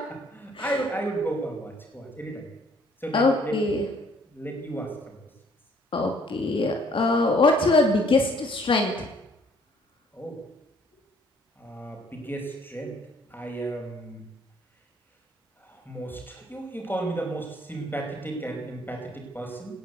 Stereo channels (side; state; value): both; normal; correlation 0.61